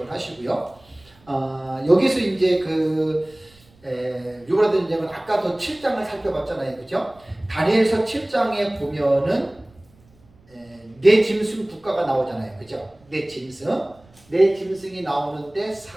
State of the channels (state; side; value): noise; right; rumble, 29 dB below the sound